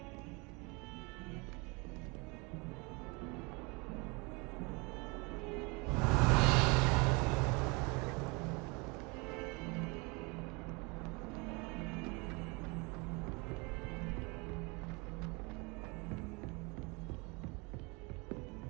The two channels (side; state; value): left; quieter; 28.5 dB